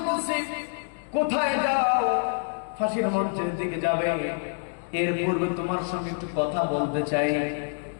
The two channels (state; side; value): silent; right; digital silence